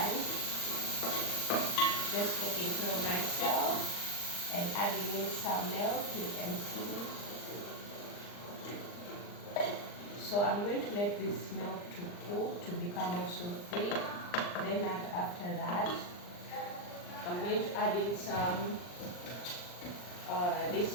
Just taking care of myself and adding in some milk, you can see. So I'm going to let this milk to cook to become also thick. Then after that, I'm going to add in some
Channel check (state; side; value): late; right; 39 ms